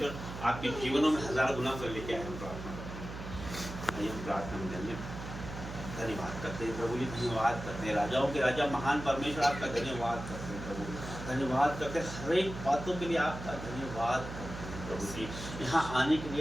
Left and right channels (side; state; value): right; noise; hum, 9 dB below the sound